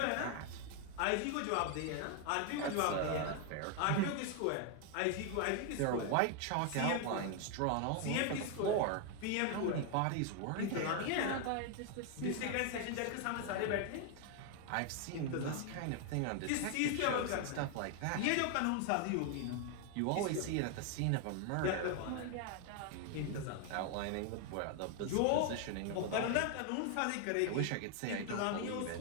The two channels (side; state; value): both; different; correlation 0.00